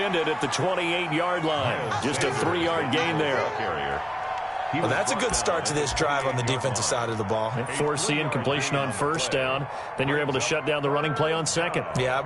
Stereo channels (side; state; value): both; identical; correlation 1.00